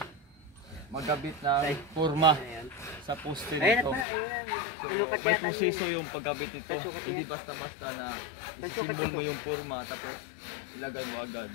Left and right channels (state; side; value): drops out; right; at 4.0 s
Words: magkabit ng forma sa poste nito. So may proseso yung pagkabit nito. Hindi basta-basta na isisimbol mo yung forma tapos ilagay mo agad.